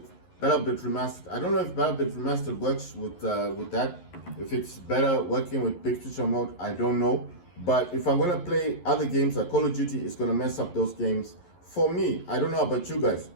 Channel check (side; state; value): right; late; 11 ms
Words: BattleBit Remastered. I don't know if BattleBit Remastered works with that. If it's better working with big picture mode, I don't know. But if I'm gonna play other games like Call of Duty, it's gonna mess up those games. For me, I don't know about you guys.